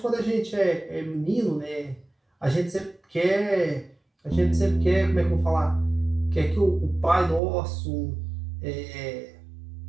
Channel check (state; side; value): drops out; left; at 7.4 s